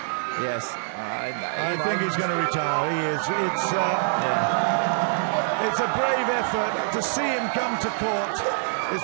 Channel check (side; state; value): left; silent; digital silence